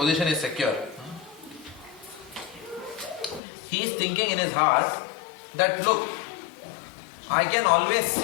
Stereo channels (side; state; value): right; drops out; at 3.4 s